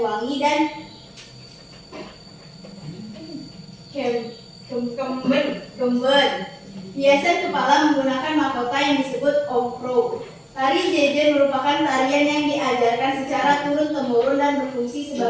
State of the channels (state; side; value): identical; both; correlation 1.00